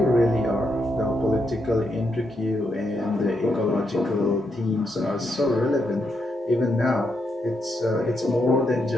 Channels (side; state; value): both; normal; correlation 0.81